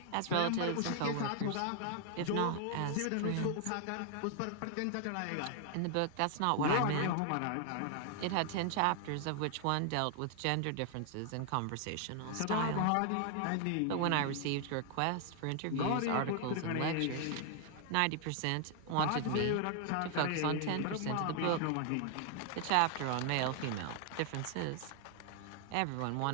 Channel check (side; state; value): both; different; correlation 0.00